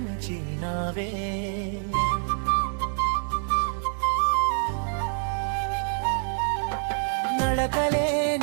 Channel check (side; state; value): left; silent; 61 dB below the other